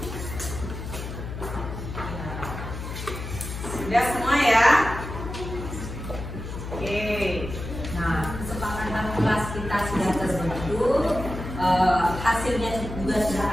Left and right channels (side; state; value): left; noise; hum, 8 dB below the sound